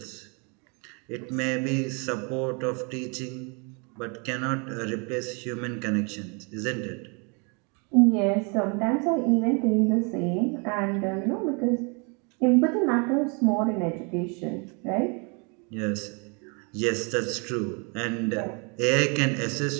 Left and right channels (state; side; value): quieter; left; 33.4 dB